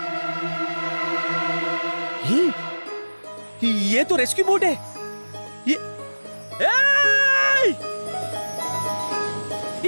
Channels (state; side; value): inverted; both; correlation -1.00